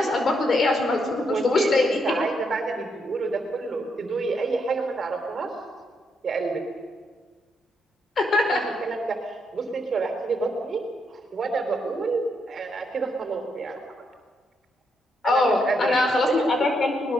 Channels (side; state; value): both; normal; correlation 0.78